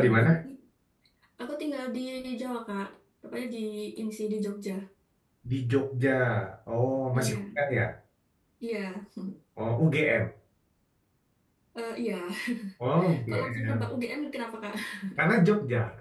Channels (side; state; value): both; identical; correlation 1.00